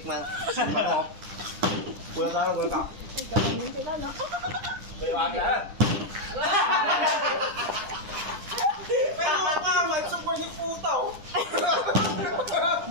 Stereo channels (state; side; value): late; left; 9.9 ms